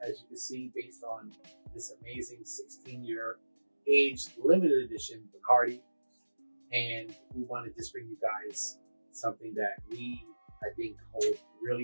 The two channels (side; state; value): both; inverted; correlation -1.00